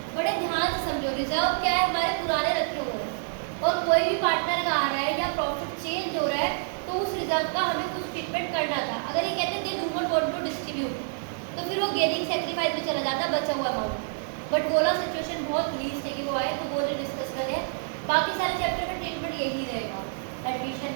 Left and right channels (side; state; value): left; silent; 60 dB below the other